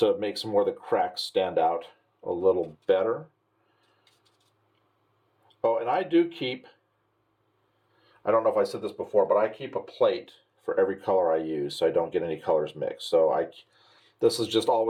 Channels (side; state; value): both; identical; correlation 1.00